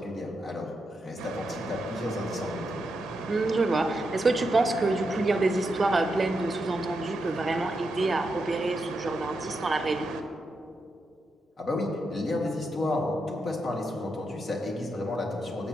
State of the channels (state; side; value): normal; both; correlation 0.84